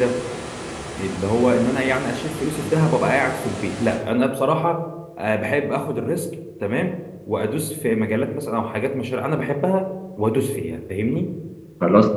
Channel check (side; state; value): both; identical; correlation 1.00